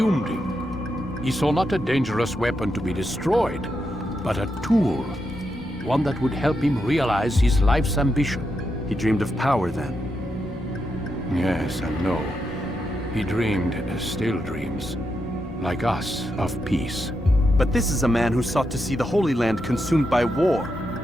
him. He saw not a dangerous weapon to be destroyed, but a tool. One that would help him realize his life's ambition. He dreamed of power then? Yes and no. He dreamed, still dreams, like us, of peace. But this is a man who sought to see the Holy Land consumed by war.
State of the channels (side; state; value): both; normal; correlation 0.84